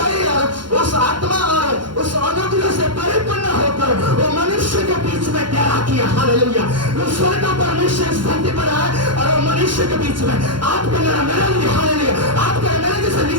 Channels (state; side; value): late; left; 0.72 ms